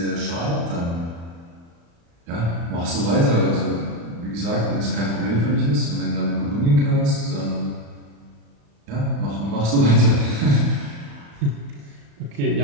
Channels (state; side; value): late; left; 35 ms